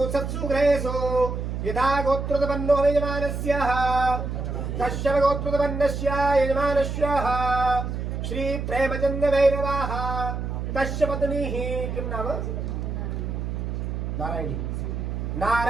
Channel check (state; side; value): noise; right; hum, 4 dB below the sound